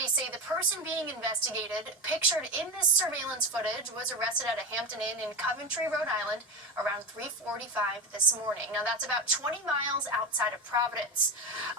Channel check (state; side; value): normal; both; correlation 0.18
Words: say the person being investigated, pictured in this surveillance footage, was arrested at a Hampton Inn in Coventry, Rhode Island, around 3:45 this morning. Now, that's about 20 miles outside of Providence.